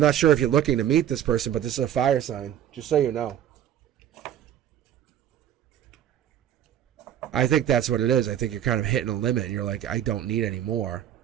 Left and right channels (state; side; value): quieter; left; 10.7 dB